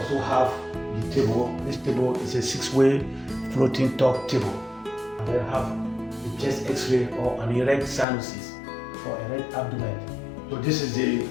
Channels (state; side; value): drops out; right; at 8.1 s